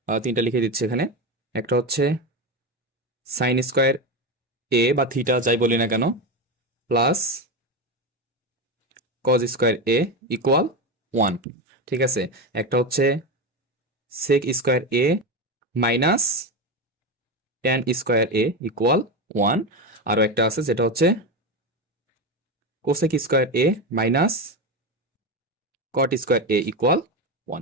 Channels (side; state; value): both; normal; correlation 0.16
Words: তিনটা লিখে দিচ্ছি এখানে। একটা হচ্ছে সাইন স্কয়ার এ বা থিটা যাই বলি না কেন প্লাস কজ স্কয়ার এ ইকুয়াল 1। ঠিক আছে, একটা হচ্ছে সেক square A minus 10 square A equal 1। আরও একটা আছে যেটা হচ্ছে cosec square A minus cot square A equal